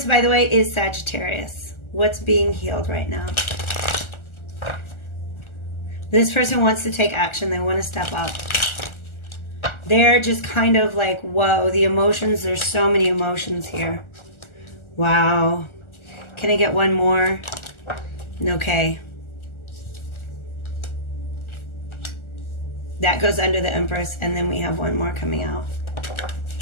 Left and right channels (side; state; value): right; late; 1.4 ms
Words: by the way, is Sagittarius. What's being healed right now? This person wants to take action. They want to step up. They're just kind of like, whoa, the emotions. There's so many emotions here. Wow. Can I get one more? Okay. That goes under the Empress. And then we have one more coming out.